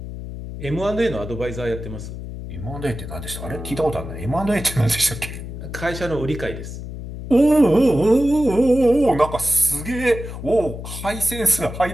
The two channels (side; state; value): left; noise; hum, 9 dB below the sound